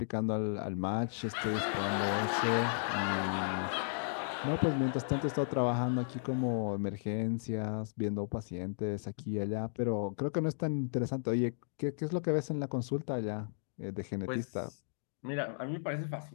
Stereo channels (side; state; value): right; silent; digital silence